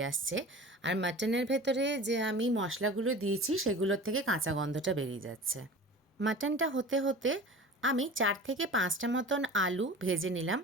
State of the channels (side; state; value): both; normal; correlation 0.37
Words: আসছে আর মাটনের ভেতরে যে আমি মশলাগুলো দিয়েছি সেগুলোর থেকে কাঁচা গন্ধটা বেরিয়ে যাচ্ছে। মাটনটা হতে হতে আমি 4 থেকে 5টা মতন আলু ভেজে নিলাম।